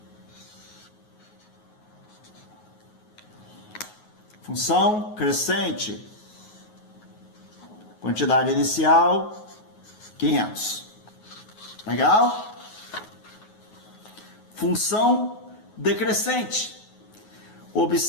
Função crescente. Quantidade inicial, 500. Legal? Função decrescente.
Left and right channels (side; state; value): right; late; 9.4 ms